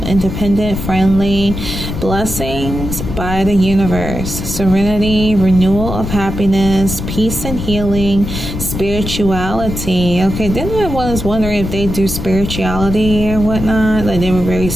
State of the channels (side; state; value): left; noise; rumble, 6 dB below the sound